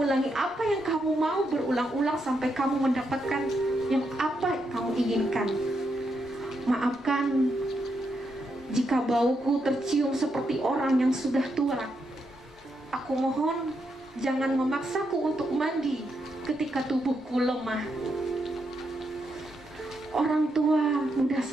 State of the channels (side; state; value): both; normal; correlation 0.81